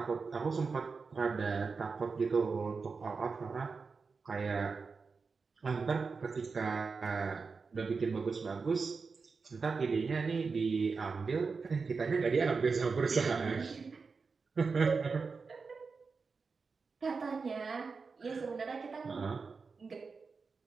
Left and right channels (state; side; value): quieter; left; 4.8 dB